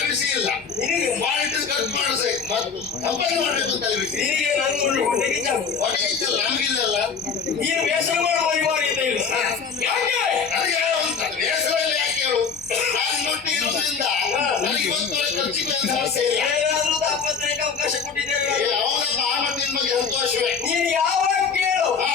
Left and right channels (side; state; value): right; quieter; 5.8 dB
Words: ನೀನು ಬೇಸರ ಮಾಡುವ ಅನಿವಾರ್ಯತೆ ಇಲ್ಲ. ಯಾಕೆ ಏನಾದ್ರೂ ತಾಪತ್ರೆಗೆ ಅವಕಾಶ ಕೊಟ್ಟಿದ್ದೇವೆ. ನೀನು ಯಾವಾಗ ಕೇಳು